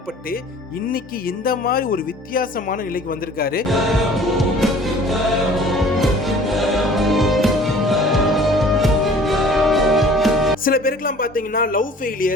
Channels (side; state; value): both; normal; correlation 0.49